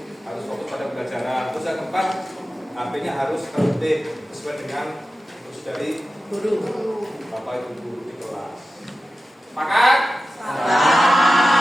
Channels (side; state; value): both; normal; correlation 0.94